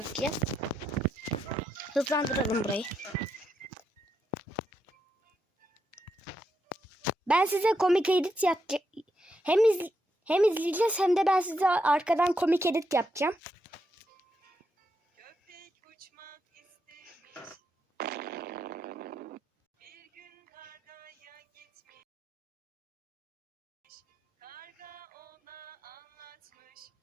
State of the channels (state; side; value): normal; both; correlation 0.81